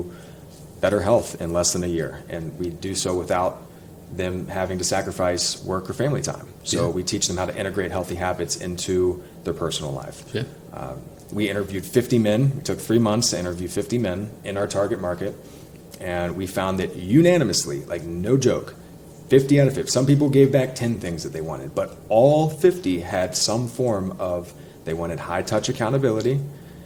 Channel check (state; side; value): identical; both; correlation 1.00